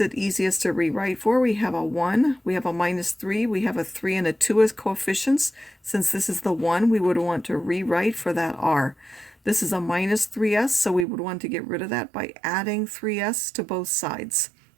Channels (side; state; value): left; drops out; at 11.1 s